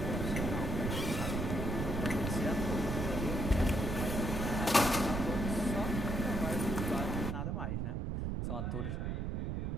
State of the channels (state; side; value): noise; right; rumble, 1 dB below the sound